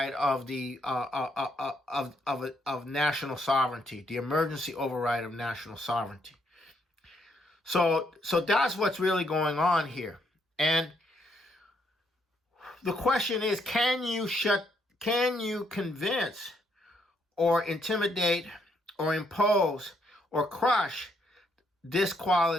of the of national sovereignty, the emergency override of national sovereignty. So that's what's really going on here. And the question is, can you convince or intimidate or impose or crush this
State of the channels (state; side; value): normal; both; correlation 0.74